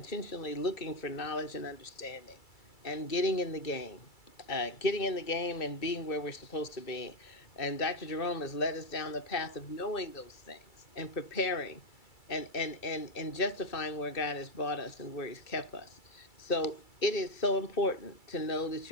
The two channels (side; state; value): right; late; 2.3 ms